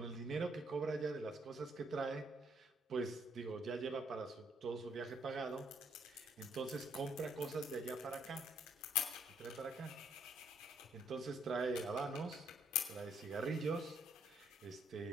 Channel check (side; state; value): both; normal; correlation 0.70